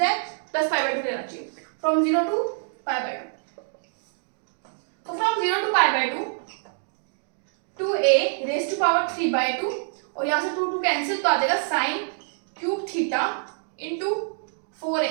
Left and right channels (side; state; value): left; silent; digital silence